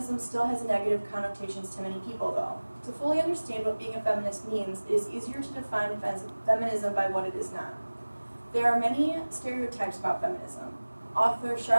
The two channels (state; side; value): inverted; both; correlation -1.00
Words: still has negative connotations to many people, though. To fully understand what being a feminist means, it is easier to define feminism by what it is not. There are many stereotypes about feminism. Author